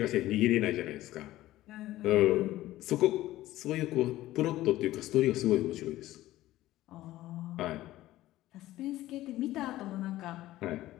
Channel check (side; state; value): right; quieter; 15.7 dB